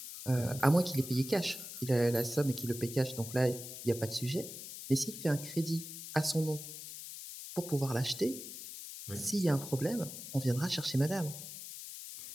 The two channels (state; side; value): noise; left; hiss, 10 dB below the sound